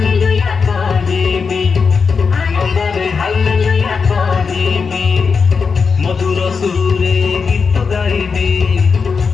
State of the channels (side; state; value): right; quieter; 5.4 dB